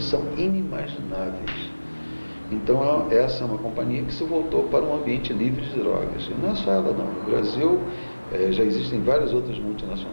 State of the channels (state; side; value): inverted; both; correlation -1.00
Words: são inimagináveis. Então essa é uma companhia que se voltou para um ambiente livre de drogas. E não é só ela não. No Brasil já existem várias outras